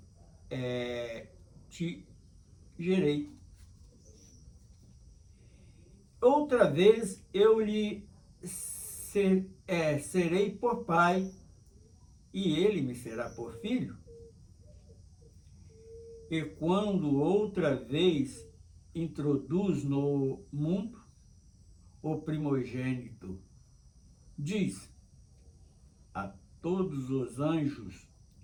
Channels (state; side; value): identical; both; correlation 1.00